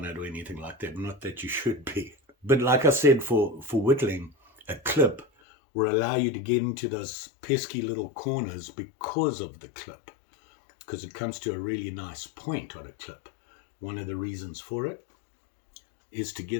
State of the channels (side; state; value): right; drops out; at 5.2 s